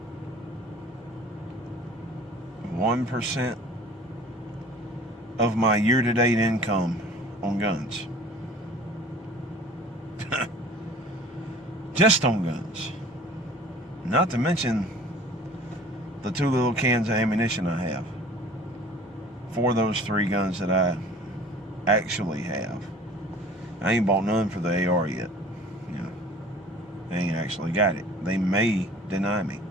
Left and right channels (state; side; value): normal; both; correlation 0.47